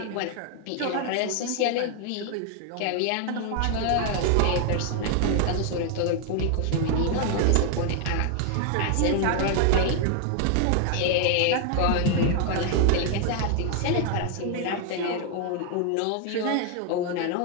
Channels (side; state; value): both; different; correlation 0.00